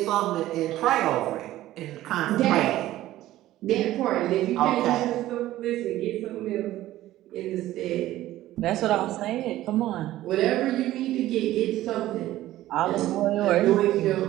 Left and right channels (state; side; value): quieter; left; 14.9 dB